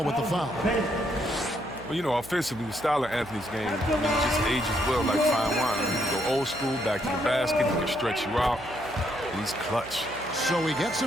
with the foul. Well, you know, offensively, the style of Anthony's game, it just ages well like fine wine. I mean, he can go old school, back to the basket, he can stretch you out, and he's clutch. So he gets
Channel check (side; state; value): right; noise; hum, 17 dB below the sound